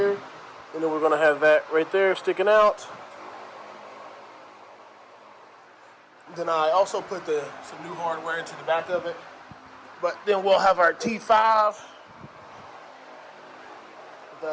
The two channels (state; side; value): identical; both; correlation 1.00